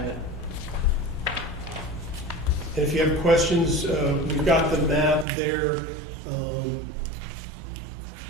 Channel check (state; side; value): drops out; left; at 5.2 s